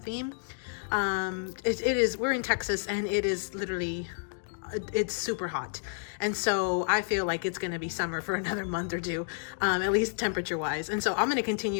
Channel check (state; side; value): silent; right; digital silence